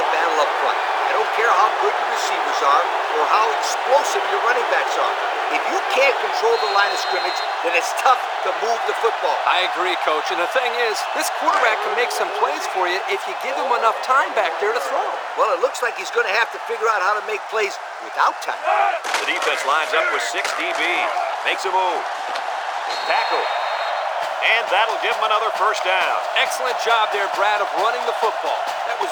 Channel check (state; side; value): identical; both; correlation 1.00